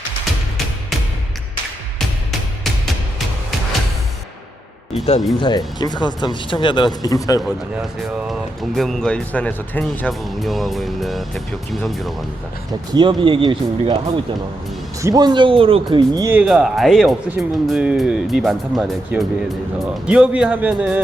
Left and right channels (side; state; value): both; normal; correlation 0.84